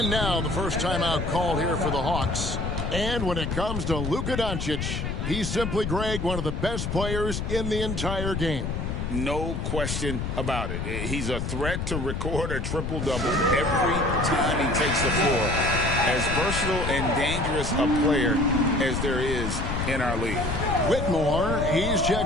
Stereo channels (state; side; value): noise; left; rumble, 3 dB below the sound